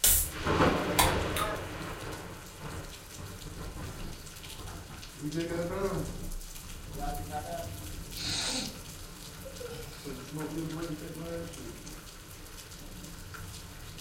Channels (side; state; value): both; identical; correlation 1.00